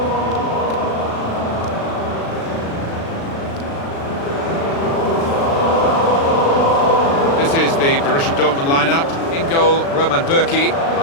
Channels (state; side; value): late; right; 36 ms